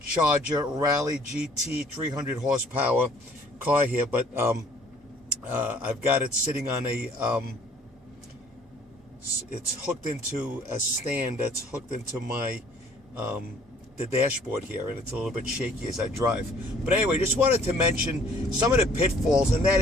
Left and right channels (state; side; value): normal; both; correlation 0.57